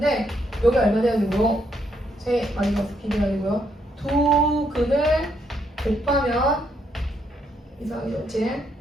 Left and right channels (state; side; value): normal; both; correlation 0.75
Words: 여기 얼마 돼야 되고 세 마이너스 b 돼야 되고요. 두 근을 곱하면 이상하게 좋지.